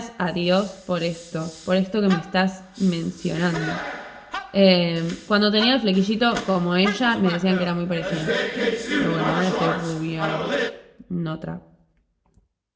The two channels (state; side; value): identical; both; correlation 1.00